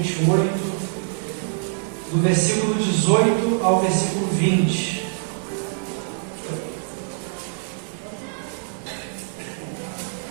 do versículo 18 ao versículo 20.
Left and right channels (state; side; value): silent; left; digital silence